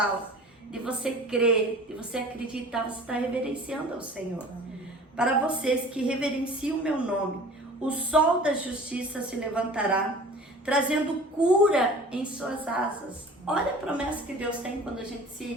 de você crer, de você acreditar, você está reverenciando ao Senhor. Para vocês que reverenciam o meu nome, o sol da justiça se levantará, trazendo cura em suas asas. Olha a promessa que Deus tem quando a gente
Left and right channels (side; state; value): both; normal; correlation 0.44